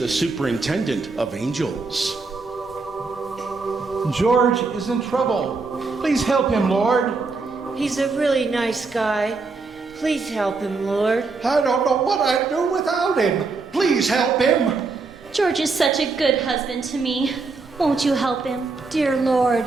superintendent of angels. George is in trouble. Please help him, Lord. He's a really nice guy. Please help him, Lord. I don't know what I'd do without him. Please help him. George is such a good husband to me. Won't you help him? Dear Lord,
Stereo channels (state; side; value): quieter; left; 4.1 dB